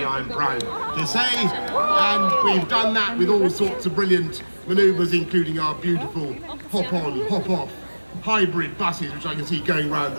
I am proud to say. And we've done that with all sorts of brilliant manoeuvres, including our beautiful hop-on, hop-off hybrid buses, which I can see going round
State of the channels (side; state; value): both; inverted; correlation -1.00